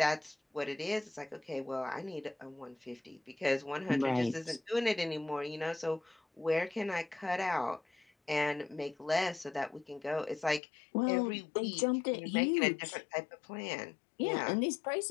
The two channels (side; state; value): right; drops out; at 10.6 s